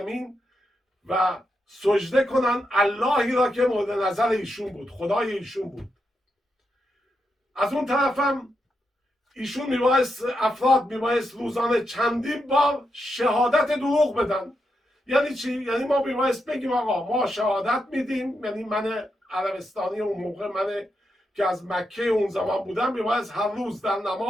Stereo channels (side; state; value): both; normal; correlation 0.84